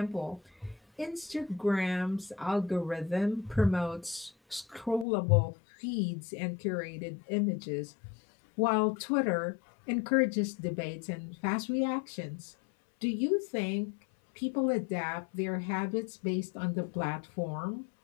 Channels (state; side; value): drops out; right; at 5.1 s